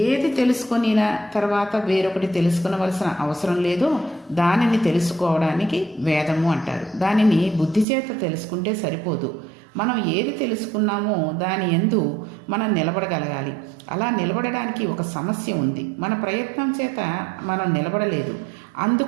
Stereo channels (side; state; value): left; drops out; at 7.9 s